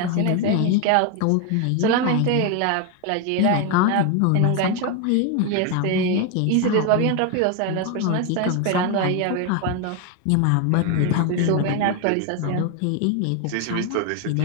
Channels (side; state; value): both; different; correlation 0.01